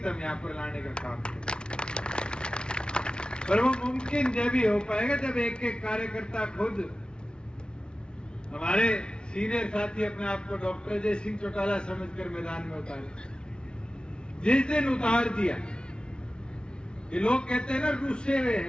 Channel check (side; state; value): right; late; 0.055 ms